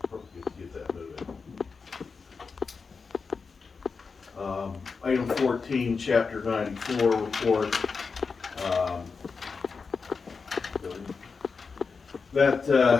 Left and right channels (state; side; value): quieter; right; 5.0 dB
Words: get that moving. Item 14, chapter 94 report.